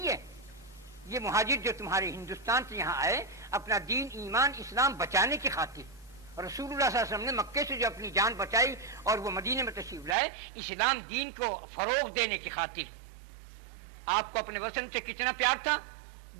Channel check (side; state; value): left; drops out; at 10.2 s